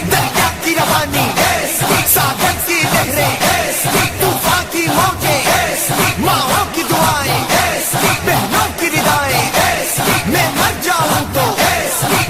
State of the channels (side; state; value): both; identical; correlation 1.00